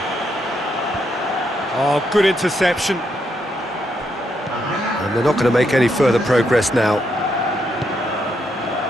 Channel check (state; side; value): normal; both; correlation 0.78